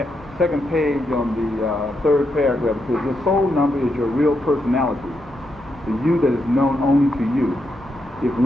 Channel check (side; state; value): both; normal; correlation 0.82